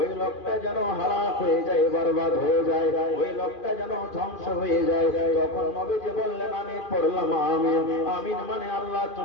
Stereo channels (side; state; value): right; late; 2.4 ms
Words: লোকটা যেন হালাক হয়ে যায়, বরবাদ হয়ে যায়, ওই লোকটা যেন ধ্বংস হয়ে যায়। তখন নবীজি বললেন, আমি পড়লাম আমিন। আমিন মানে আল্লাহ